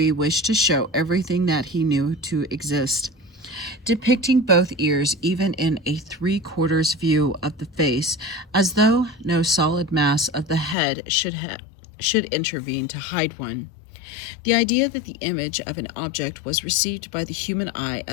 wished to show everything that he knew to exist, depicting both ears even in a three-quarters view of the face, as though no solid mass of the head should intervene to hide one. The idea that the image of an object was received by the human eye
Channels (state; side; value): drops out; right; at 10.8 s